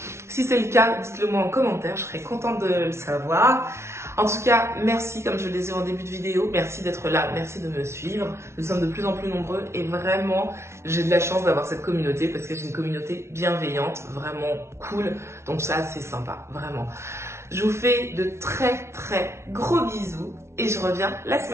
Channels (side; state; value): left; late; 0.13 ms